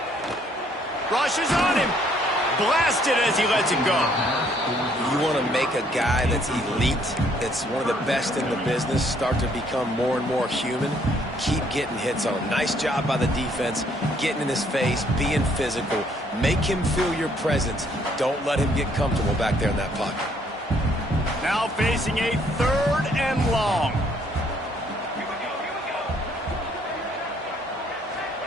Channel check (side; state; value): both; normal; correlation 0.66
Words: Rushes on him. Blasted as he lets it go. You want want to make a guy that's elite, that's one of the best in the business, start to become more and more human, keep getting hits on him. Nice job by the defense, getting in his face, being physical. Make him feel your presence. Don't let him get comfortable back there in that pocket. Now facing a 3rd and long.